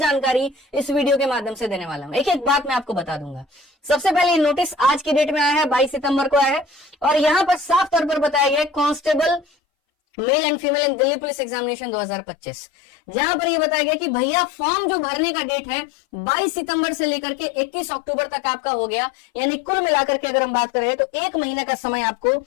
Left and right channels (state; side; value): drops out; right; at 9.5 s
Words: इस वीडियो के माध्यम से देने वाला हूं। एक एक बात मैं आपको बता दूंगा। सबसे पहले नोटिस आज की डेट में आया है, 22 सितंबर को आया है, और यहां पर साफ तौर पर बताया गया है constable male and female in Delhi police examination 2025, जहां पर ये बताया गया कि भैया फॉर्म जो भरने का डेट है 22 सितंबर से लेकर के 21 अक्टूबर तक आपका हो गया। यानी कुल मिलाकर के अगर हम बात करें तो 1 महीने का समय आपको